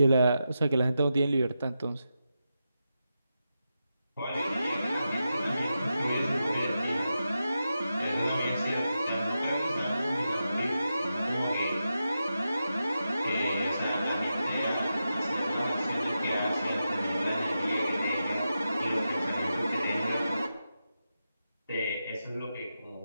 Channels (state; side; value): inverted; both; correlation -0.89